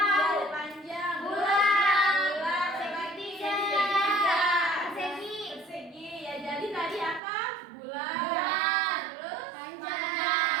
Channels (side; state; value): left; drops out; at 7.2 s